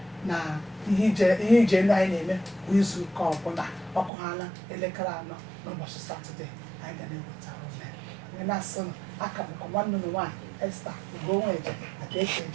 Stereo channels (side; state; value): left; drops out; at 4.1 s